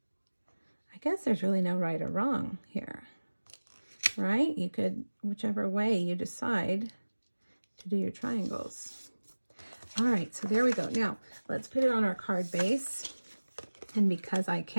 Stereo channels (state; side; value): inverted; both; correlation -1.00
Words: I guess there's really no right or wrong here, right? You could, whichever way you decide to do your triangles. All right, so there we go. Now, let's put it on our card base. And because I